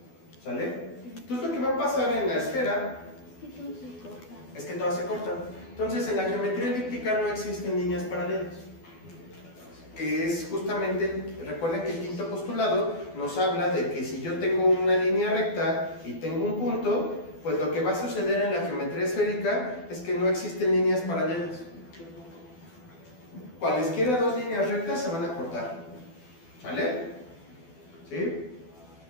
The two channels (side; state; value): right; late; 12 ms